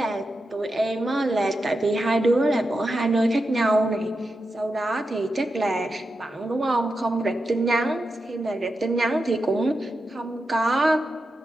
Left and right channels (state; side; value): normal; both; correlation 0.89